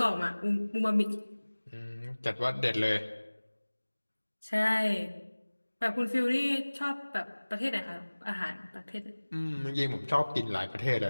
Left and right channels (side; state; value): both; inverted; correlation -1.00